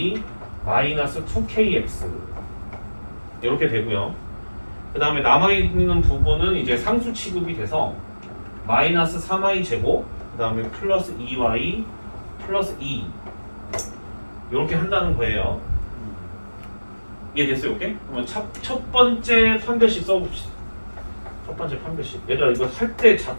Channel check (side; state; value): both; inverted; correlation -1.00